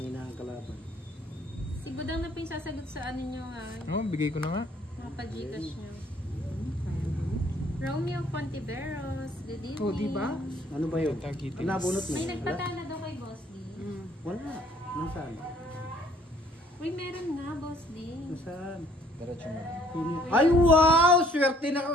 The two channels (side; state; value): both; normal; correlation 0.61